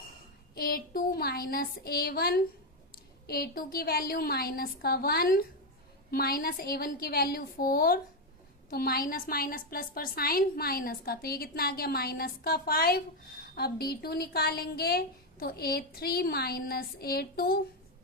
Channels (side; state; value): both; normal; correlation 0.06